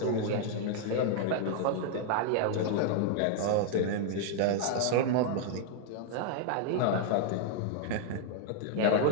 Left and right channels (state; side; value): different; both; correlation 0.00